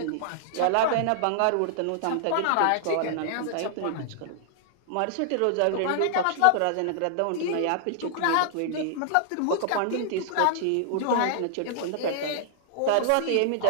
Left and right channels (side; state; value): both; different; correlation -0.01